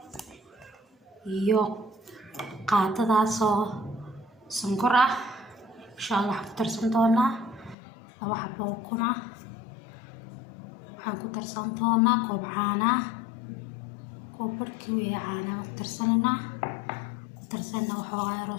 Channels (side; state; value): right; drops out; at 7.8 s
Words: iyo qaadadaas oo sonkor ah. insha Allah ku darsan doonaa 2 xabo ukun ah. waxaan ku darsan doonaa koob caano ah, koob barkii weeye caano ku darsanaa waxoogaa yar